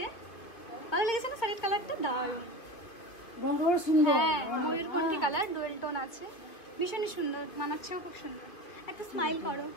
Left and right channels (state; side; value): late; right; 2.7 ms